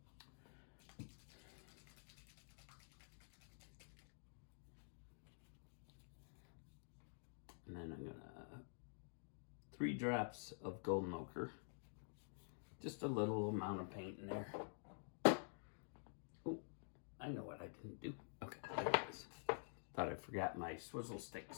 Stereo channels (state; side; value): silent; right; digital silence